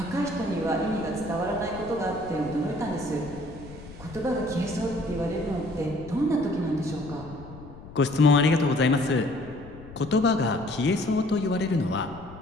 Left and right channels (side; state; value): left; noise; rumble, 16 dB below the sound